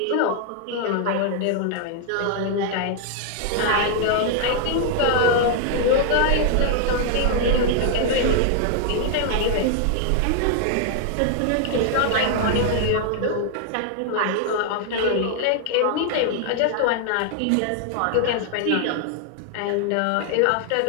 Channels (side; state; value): both; different; correlation 0.00